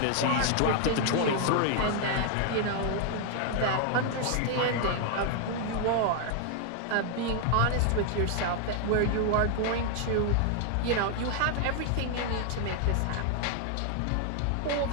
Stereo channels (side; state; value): both; different; correlation 0.00